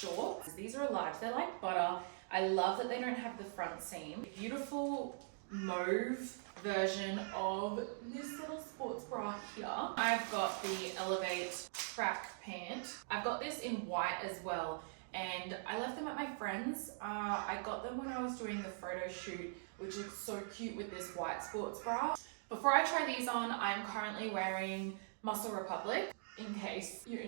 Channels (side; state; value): left; silent; digital silence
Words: These are large, they're like butter. I love that they don't have the front seam. Beautiful mauve version of this little sports bra here. I've got the Elevate track pant. I've got this in white as well, and I left them at my friend's. I got them when I was doing the photo shoot, which looks so cute with this white sports bra. Before I try these on, I'm currently wearing Muscle Republic, in case you're